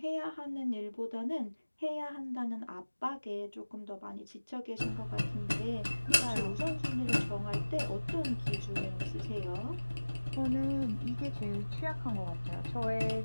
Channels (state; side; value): inverted; both; correlation -1.00